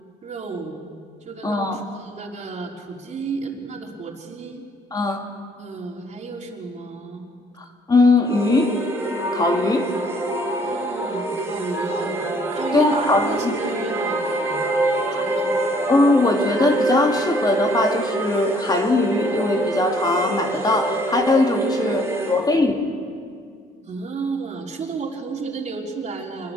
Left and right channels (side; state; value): both; normal; correlation 0.62